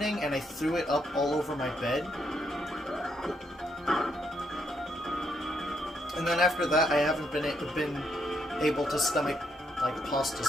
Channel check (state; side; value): normal; both; correlation 0.76